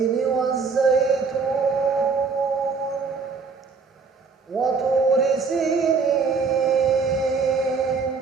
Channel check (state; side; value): quieter; left; 4.9 dB